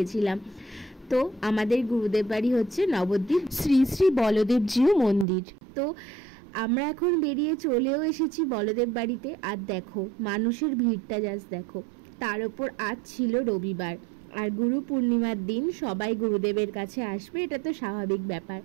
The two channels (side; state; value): left; drops out; at 5.2 s